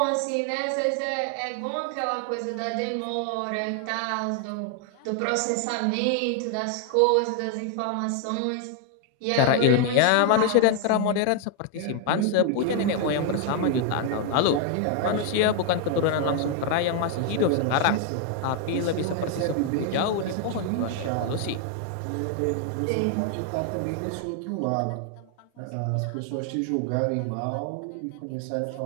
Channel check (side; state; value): both; different; correlation 0.00